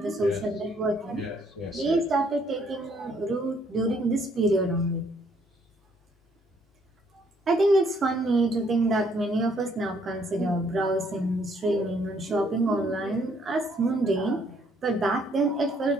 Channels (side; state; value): both; normal; correlation 0.67